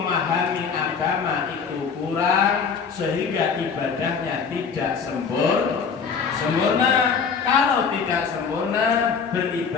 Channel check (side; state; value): right; quieter; 5.9 dB